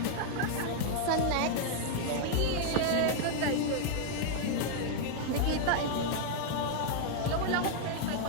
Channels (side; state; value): both; different; correlation -0.01